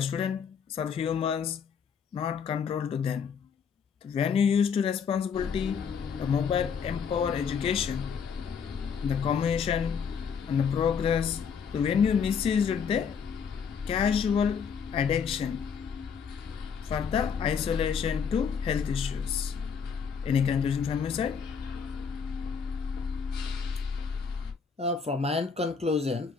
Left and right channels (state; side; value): quieter; right; 6.6 dB